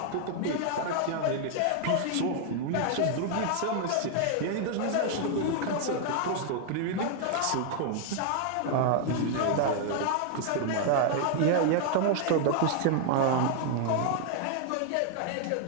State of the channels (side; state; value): both; different; correlation 0.00